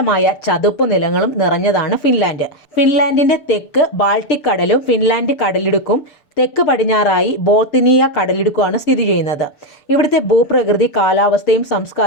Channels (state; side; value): late; right; 6.8 ms